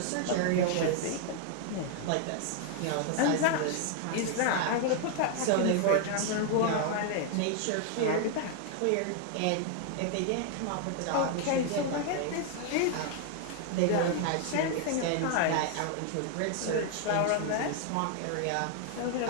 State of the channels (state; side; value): different; both; correlation 0.00